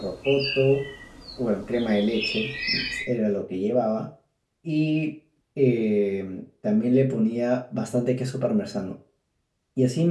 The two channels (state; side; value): identical; both; correlation 1.00